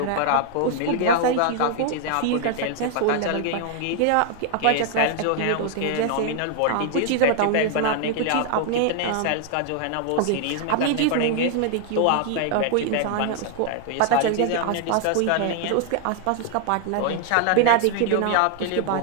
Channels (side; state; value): both; different; correlation 0.00